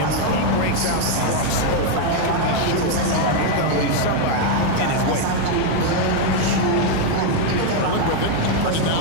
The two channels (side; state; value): both; different; correlation 0.01